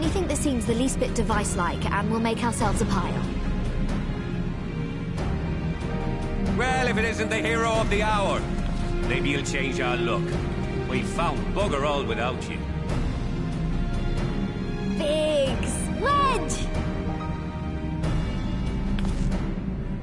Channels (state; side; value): identical; both; correlation 1.00